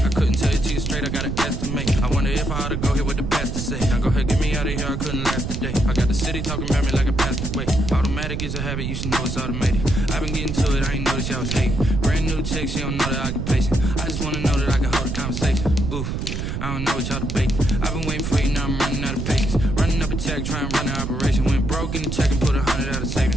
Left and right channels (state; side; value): noise; right; rumble, 3 dB below the sound